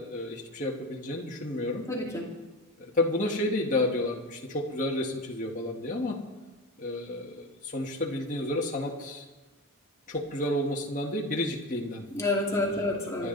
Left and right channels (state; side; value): normal; both; correlation 0.26